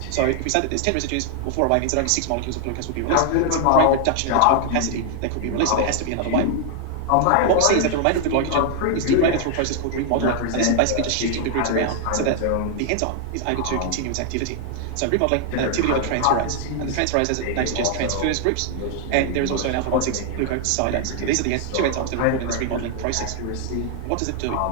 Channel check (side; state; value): both; different; correlation 0.00